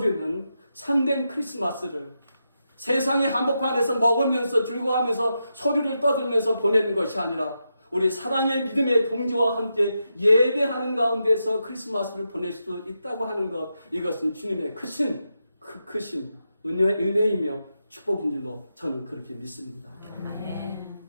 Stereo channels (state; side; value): inverted; both; correlation -0.86